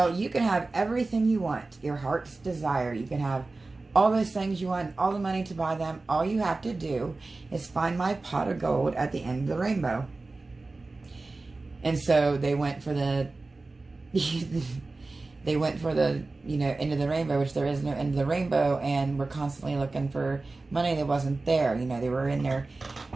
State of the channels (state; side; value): quieter; left; 3.4 dB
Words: you can have everything you want, your heart's desire. You can have all those things you want, all the money to buy them. All you have to do is find my pot of gold at the end of the rainbow. And so they went for the, you know, end of the rainbow, which there is no end of the rainbow, and were constantly looking for money that wasn't there. You know, they were in their